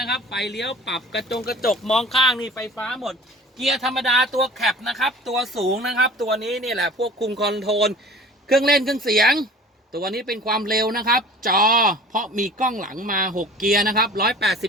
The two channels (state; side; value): normal; both; correlation 0.44